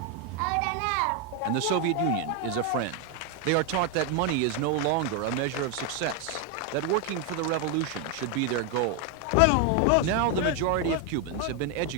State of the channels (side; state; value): both; normal; correlation 0.01